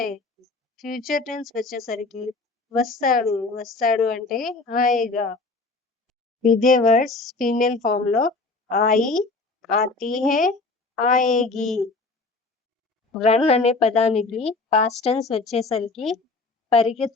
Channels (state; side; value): quieter; right; 3.6 dB